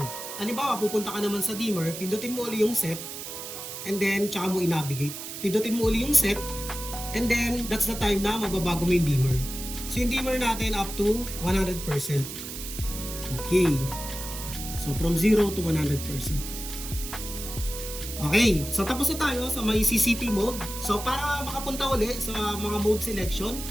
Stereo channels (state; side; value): noise; right; hiss, 9 dB below the sound